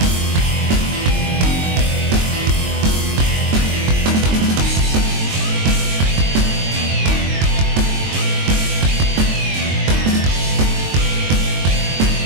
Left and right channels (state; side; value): late; left; 22 ms